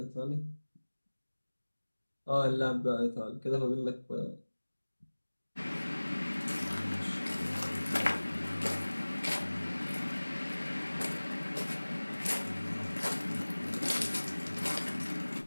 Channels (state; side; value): inverted; both; correlation -1.00